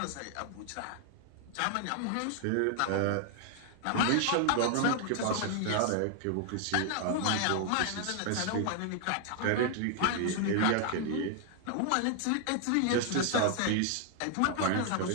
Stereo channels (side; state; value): both; different; correlation 0.00